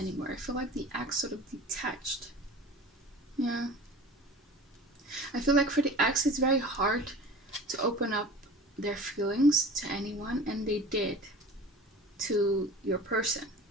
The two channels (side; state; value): both; normal; correlation 0.39